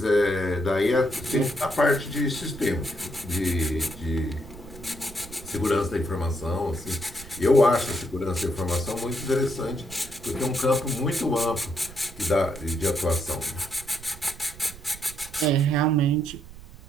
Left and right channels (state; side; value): noise; right; rumble, 17 dB below the sound